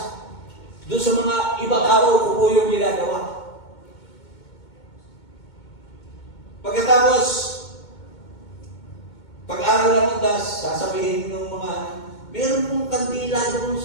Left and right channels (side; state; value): right; late; 2.2 ms